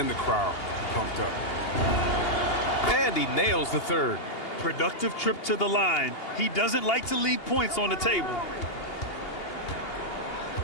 the crowd pumped up. And he nails the third. Productive trip to the line. He doesn't like to leave points on the table.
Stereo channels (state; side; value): late; right; 2.8 ms